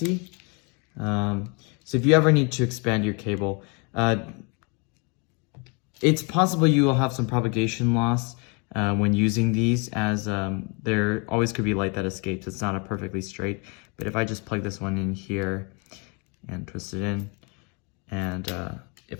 So if you ever need to expand your cable, it's possible you will have some propagation loss when using these, as there always could be light that escapes. It's not a perfectly straight, but if I just plug this one in here, and twist it in. And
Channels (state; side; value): quieter; right; 33.1 dB